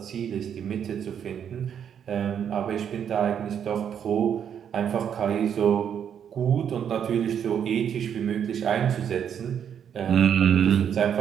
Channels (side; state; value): left; quieter; 8.5 dB